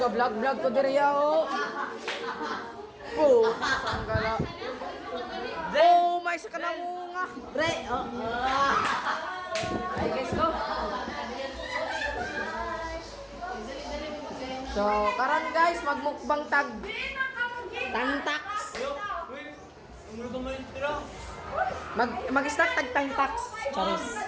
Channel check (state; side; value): identical; both; correlation 1.00